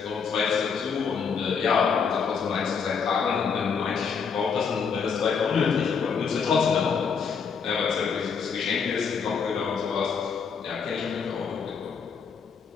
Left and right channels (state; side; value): quieter; right; 6.1 dB